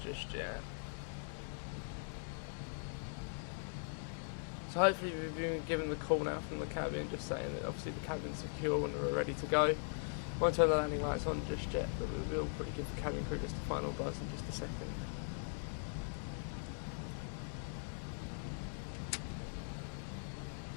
just yet. So hopefully we've been given the call now from the cabin, just saying that obviously the cabin's secure and we're ready to go. Won't turn the landing lights on just yet, but we will probably give the cabin crew just a final buzz in just a second.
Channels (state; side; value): silent; right; digital silence